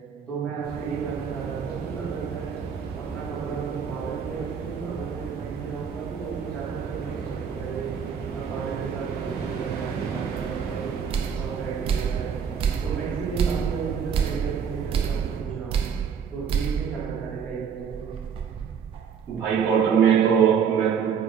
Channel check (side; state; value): left; quieter; 7.0 dB